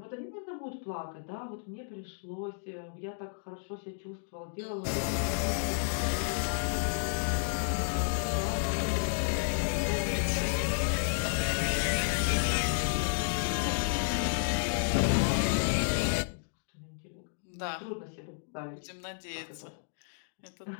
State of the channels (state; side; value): silent; right; digital silence